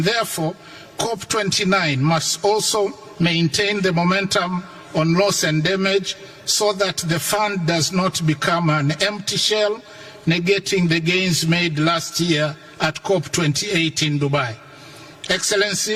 therefore COP29 must also maintain the momentum on loss and damage so that the fund does not become an empty shell, negating the gains made last year at COP28 in Dubai.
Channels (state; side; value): identical; both; correlation 1.00